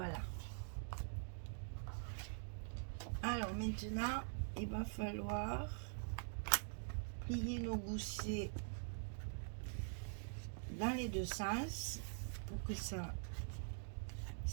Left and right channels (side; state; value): left; silent; digital silence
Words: Alors maintenant, il va falloir plier nos goussets dans les deux sens pour que ça